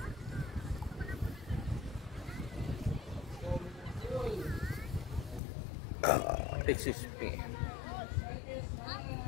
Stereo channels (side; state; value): right; drops out; at 5.4 s